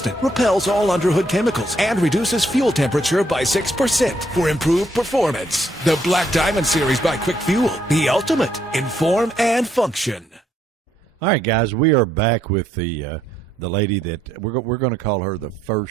repels all underhood chemicals, and reduces fuel temperature by 6% for improved performance. The Black Diamond series by Quick Fuel, the ultimate in form and function. All right, guys, we are back with the lady that we're going to call her the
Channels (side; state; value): both; normal; correlation 0.72